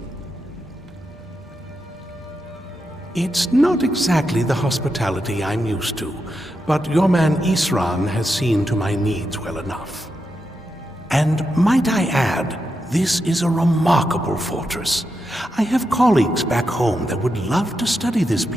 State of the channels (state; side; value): normal; both; correlation 0.86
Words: It's not exactly the hospitality I'm used to, but your man Isran has seen to my needs well enough. And might I add, this is a remarkable fortress. I have colleagues back home that would love to study this